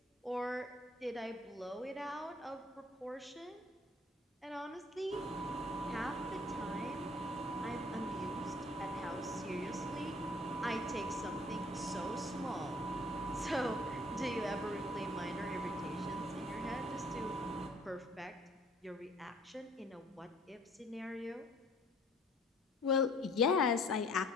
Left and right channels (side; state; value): both; normal; correlation 0.57